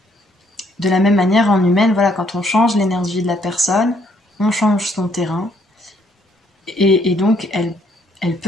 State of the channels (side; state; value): both; normal; correlation 0.68